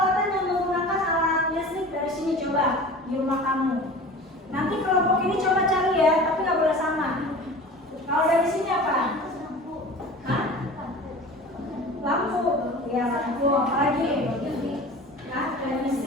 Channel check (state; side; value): normal; both; correlation 0.38